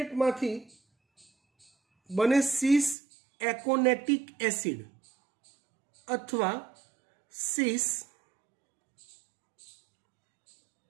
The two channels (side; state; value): left; drops out; at 3.0 s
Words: બને સિસ એકોનેટિક એસિડ અથવા સિસ